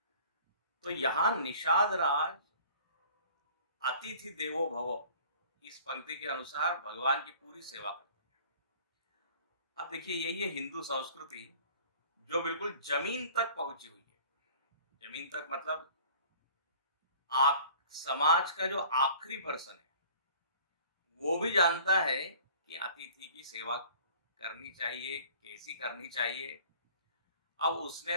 तो यहां निषाद राज अतिथि देवो भव इस पंक्ति के अनुसार भगवान की पूरी सेवा करते हैं। अब देखिए यही है हिंदू संस्कृति जो बिल्कुल जमीन तक पहुंची हुई है। जमीन तक मतलब आप समाज का जो आखिरी पर्सन है वो भी जानता है कि अतिथि की सेवा करनी चाहिए, कैसी करनी चाहिए। अब उसने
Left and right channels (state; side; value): inverted; both; correlation -0.48